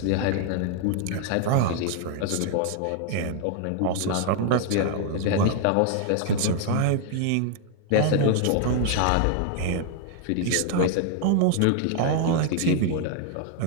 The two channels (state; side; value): different; both; correlation 0.00